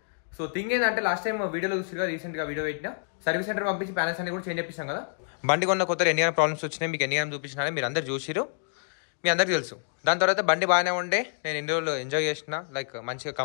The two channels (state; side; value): silent; right; digital silence